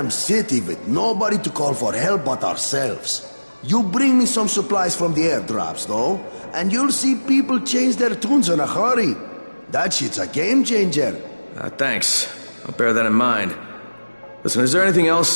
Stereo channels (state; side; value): inverted; both; correlation -1.00